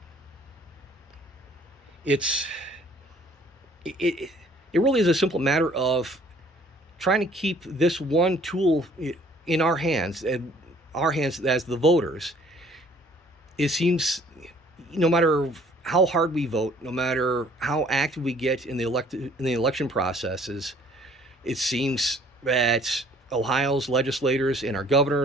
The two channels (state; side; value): normal; both; correlation 0.57